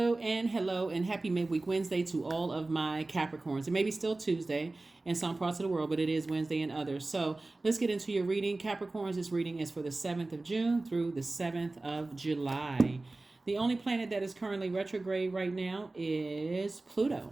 and happy midweek Wednesday to all of my Capricorns. It may be still Tuesday in some parts of the world, but it is Wednesday in others. So let's get into your reading. Capricorns, this reading is for the 7th of June through the 7th of July. The only planet that is currently retrograde right now is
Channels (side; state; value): left; quieter; 3.1 dB